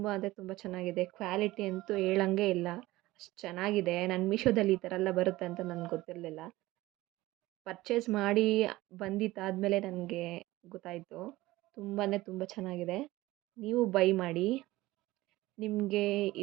ಅಂದರೆ ತುಂಬ ಚೆನ್ನಾಗಿದೆ. ಕ್ವಾಲಿಟಿ ಅಂತೂ ಹೇಳಂಗೆ ಇಲ್ಲ, ಅಷ್ಟು ಚೆನ್ನಾಗಿದೆ. ನಾನು ಮೀಶೋದಲ್ಲಿ ಈ ಥರ ಎಲ್ಲ ಬರುತ್ತೆ ಅಂತ ನನಗೆ ಗೊತ್ತಿರಲಿಲ್ಲ. ಪರ್ಚೇಸ್ ಮಾಡಿ ಬಂದಿದ್ದಾದಮೇಲೆ ನನಗೆ ಗೊತ್ತಾಯಿತು. ತುಂಬ ಅಂದರೆ ತುಂಬ ಚೆನ್ನಾಗಿದೆ. ನೀವು ಬೈ ಮಾಡಿ. ನಿಮಗೆ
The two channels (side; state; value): left; quieter; 18.3 dB